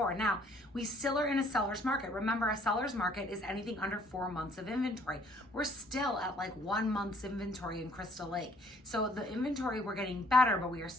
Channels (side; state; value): both; normal; correlation 0.61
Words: Now, we still are in a seller's market. Remember, a seller's market is anything under 4 months of inventory. We're still at like 1 month's inventory in Crystal Lake. So the inventory, we're getting better, but we are